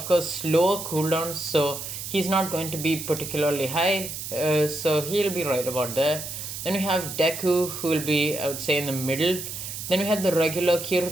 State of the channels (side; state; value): right; noise; hiss, 7 dB below the sound